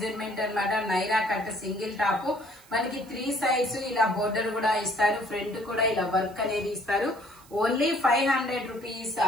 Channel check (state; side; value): noise; right; hiss, 25 dB below the sound